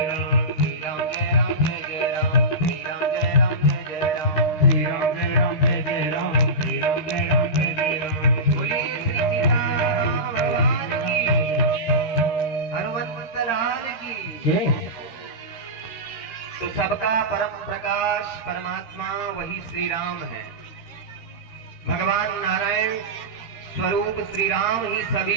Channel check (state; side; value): late; right; 13 ms